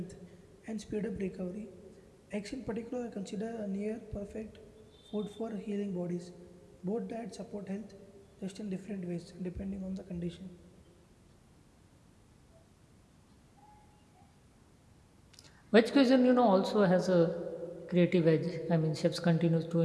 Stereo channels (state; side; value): identical; both; correlation 1.00